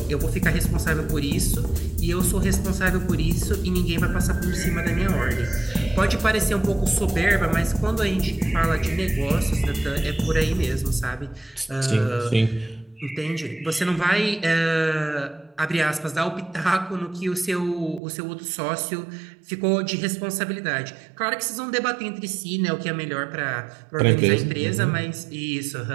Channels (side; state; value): left; drops out; at 18.0 s